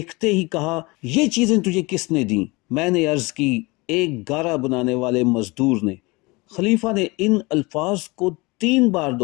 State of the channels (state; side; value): quieter; right; 24.7 dB